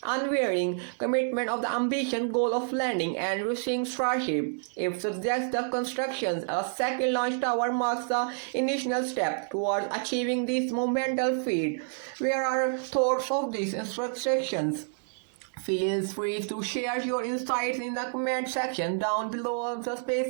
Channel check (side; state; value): left; silent; digital silence